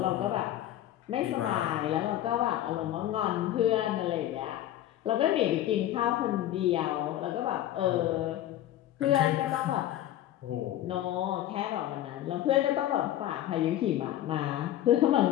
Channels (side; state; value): right; quieter; 12.9 dB